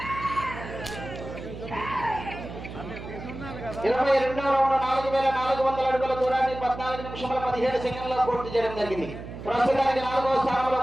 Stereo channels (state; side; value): noise; right; hum, 11 dB below the sound